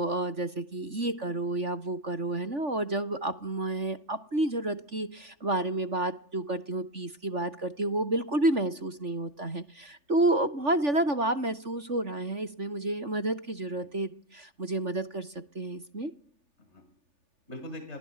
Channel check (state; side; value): late; left; 3.5 ms